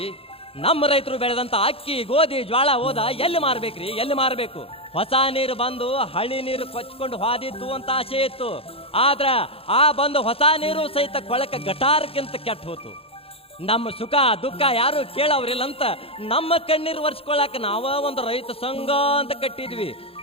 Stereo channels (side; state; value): right; late; 0.27 ms